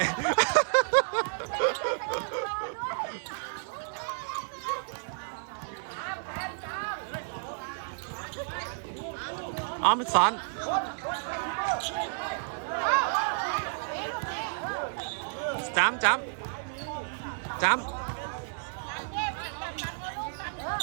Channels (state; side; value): silent; left; 57 dB below the other